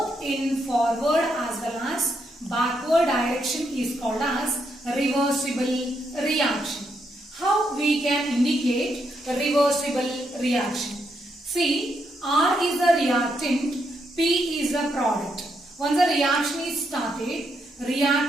in forward as well as backward direction is called as reversible reaction. How we can indicate reversible reaction? See, R is a reactant, P is a product. Once the reaction is started,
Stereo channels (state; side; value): normal; both; correlation 0.78